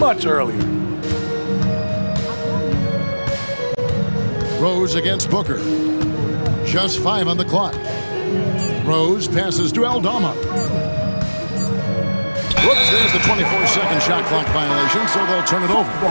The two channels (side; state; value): both; inverted; correlation -1.00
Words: earlier. Rose against Booker. Just 5 on the clock. Rose passes to Aldama. Whoops, there's the 24-second shot clock violation, so they'll turn it over.